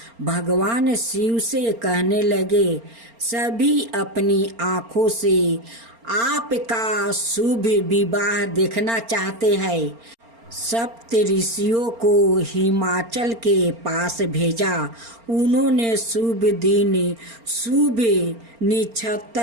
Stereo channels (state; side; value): late; left; 4.4 ms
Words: भगवान शिव से कहने लगे, सभी अपनी आंखों से आपका शुभ विवाह देखना चाहते हैं। सप्त ऋषियों को हिमाचल के पास भेजा। उन्होंने शुभ दिन, शुभ